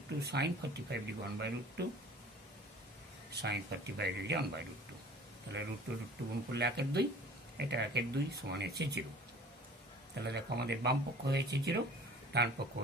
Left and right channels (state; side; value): normal; both; correlation 0.46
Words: sine 45 degree 1/√2, sine 45 degree 1/√2। তাহলে √2 গুণ করলে 1/2, এটা 1/2 সমান হচ্ছে 0। তাহলে দেখো আমাদের বাম পক্ষ হয়েছে 0, ডান পক্ষ